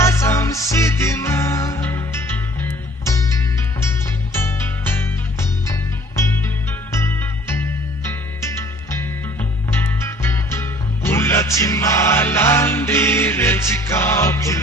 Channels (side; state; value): both; normal; correlation 0.53